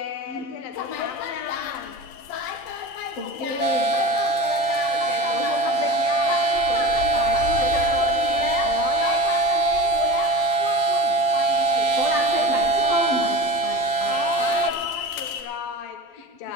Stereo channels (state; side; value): late; right; 12 ms